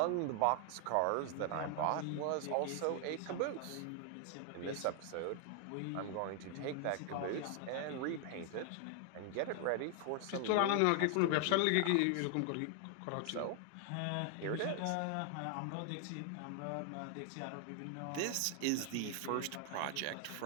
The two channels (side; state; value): both; different; correlation 0.00